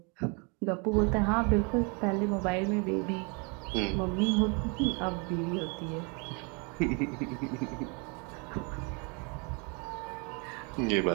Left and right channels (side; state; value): left; quieter; 33.2 dB